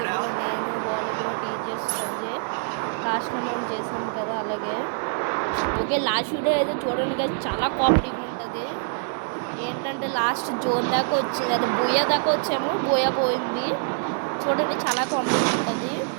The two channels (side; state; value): left; silent; digital silence